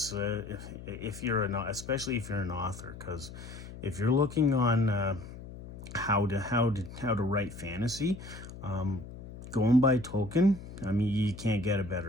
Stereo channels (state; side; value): noise; left; hum, 13 dB below the sound